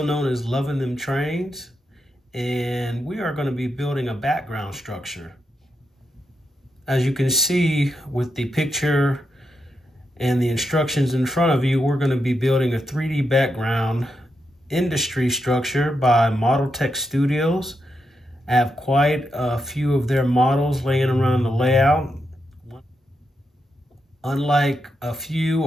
known as Loving Them Trains, and we are going to be building a background structure. As you can see with the picture and the instructions in front of you, we're going to be building a 3D background industry structure by Model Tech Studios. I have quite a few of their models laying around the layout. Unlike a few,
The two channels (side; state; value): both; normal; correlation 0.84